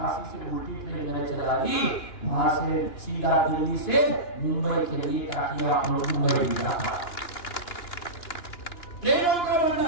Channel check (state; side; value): late; right; 2.9 ms